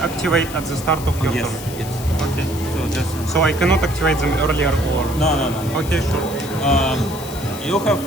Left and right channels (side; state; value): left; noise; hiss, 14 dB below the sound